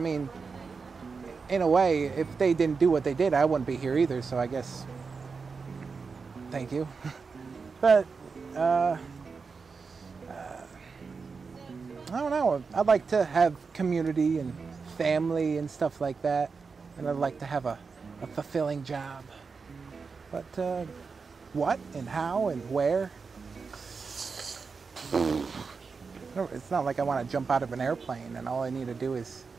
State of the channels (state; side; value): quieter; left; 4.9 dB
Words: in a way, if they didn't do what they did, I wouldn't be here either, so I guess, thank you. But, I don't know. I'd like to have community and family and stuff like that. And I'd like to have a fulfilling job. But what and how and where? It's not like I want to jump out of an airplane and all I need to do is